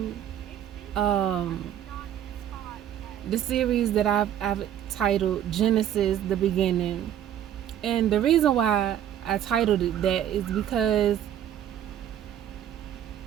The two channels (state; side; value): quieter; left; 10.6 dB